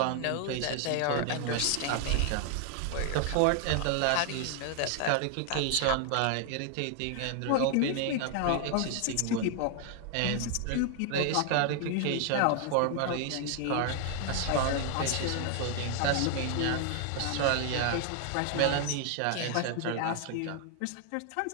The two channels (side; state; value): both; different; correlation 0.00